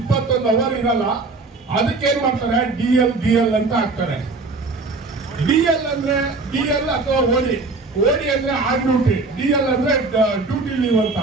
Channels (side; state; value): left; quieter; 3.7 dB